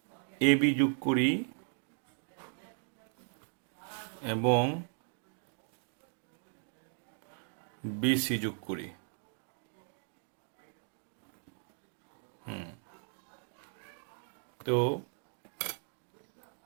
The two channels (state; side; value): silent; left; 53 dB below the other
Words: এ বি যোগ করি এবং বিসি যোগ করি। তো